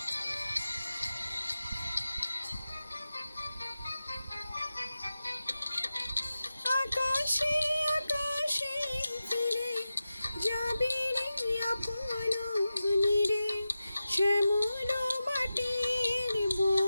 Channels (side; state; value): both; inverted; correlation -0.93